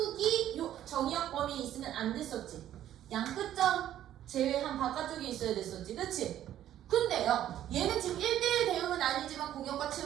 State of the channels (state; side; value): quieter; left; 11.8 dB